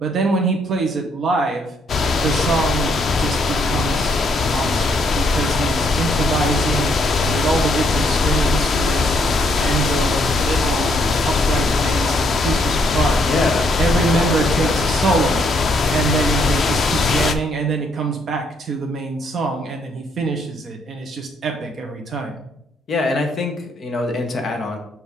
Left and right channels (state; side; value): normal; both; correlation 0.72